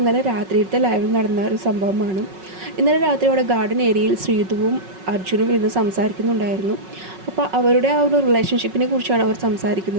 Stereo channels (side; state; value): left; late; 5.4 ms